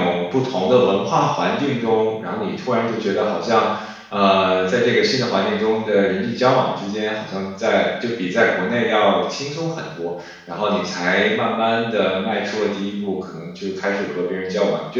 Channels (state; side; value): identical; both; correlation 1.00